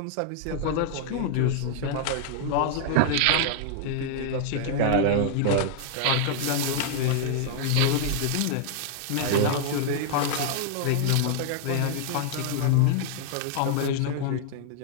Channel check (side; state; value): both; different; correlation -0.01